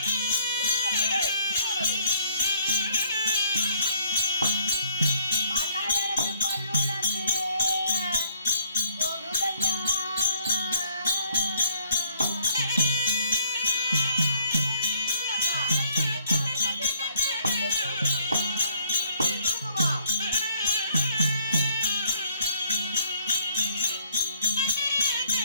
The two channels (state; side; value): inverted; both; correlation -0.65